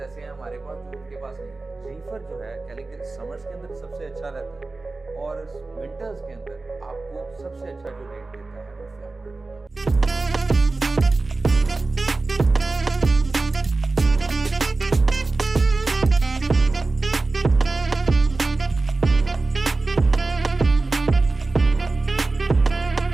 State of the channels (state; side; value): quieter; left; 3.4 dB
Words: हैं हमारे पास जो उनके पास नहीं है। रीफर जो है कह लें कि समर्स के अंदर सबसे अच्छा रहता है और विंटर्स के अंदर आपको सबसे अच्छा जो रेट देता है वो फ्लैट रेट देता है।